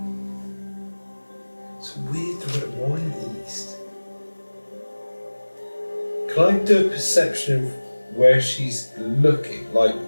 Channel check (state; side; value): inverted; both; correlation -1.00